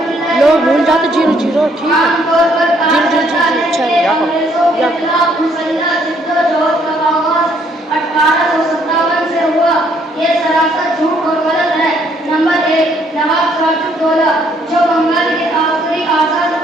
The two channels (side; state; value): both; normal; correlation 0.67